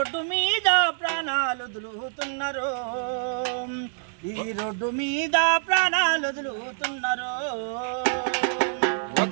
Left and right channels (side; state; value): left; silent; 61 dB below the other